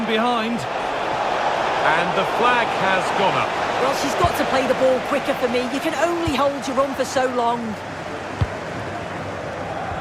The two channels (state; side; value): identical; both; correlation 1.00